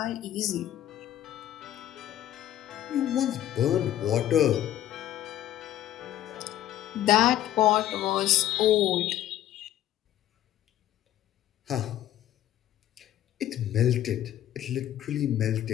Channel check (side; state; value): right; quieter; 12.6 dB